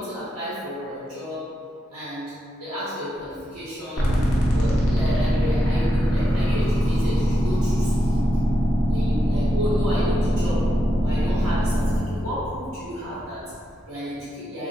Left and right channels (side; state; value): both; normal; correlation 0.86